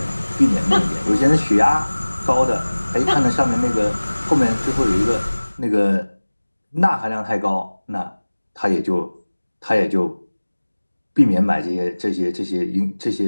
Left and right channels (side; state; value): both; inverted; correlation -1.00